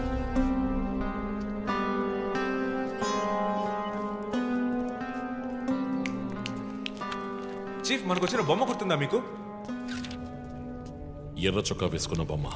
చీఫ్, మనకు వచ్చిన బొమ్మ గుర్తుందా మీకు? ఎర్ర చొక్కా వేసుకున్న బొమ్మ.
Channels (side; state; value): both; identical; correlation 1.00